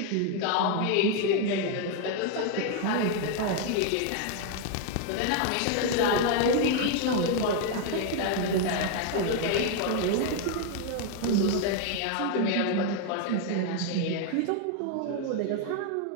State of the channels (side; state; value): both; different; correlation 0.01